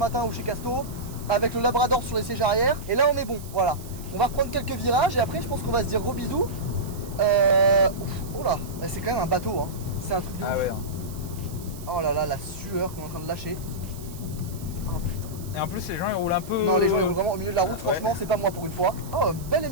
ou chez Casto avec le Labrador sur les sièges arrière. Et là, on est bon. Voilà. On va reprendre quelques virages et après, je pense qu'on va se dire gros bisous. Oh là, c'est quand même un bateau. Hein. C'est un truc de ouf. Ouais. Oh là là, la sueur qu'on est en train de lâcher. Oh putain. Et en plus, les gens ils roulent un peu. Non, les gens ils roulent vraiment au milieu de la route, franchement, Ouais. c'est pas moi pour une fois. Oh, un bel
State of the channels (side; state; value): right; noise; hiss, 18 dB below the sound